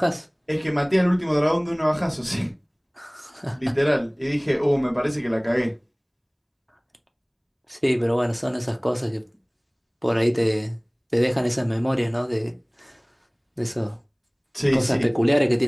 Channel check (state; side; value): identical; both; correlation 1.00